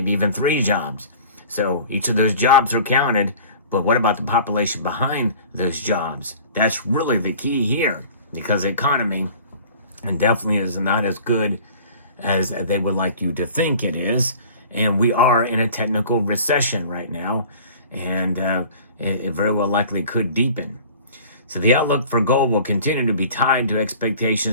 even 3 jobs. So each of those jobs are counted, but what about the population behind those jobs? That's really the key here, because the economy definitely is not as good as they would like you to think it is. And we are in a technical recession right now, and it very well likely could deepen. So the outlook for gold will continue to be tied to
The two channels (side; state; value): both; inverted; correlation -0.45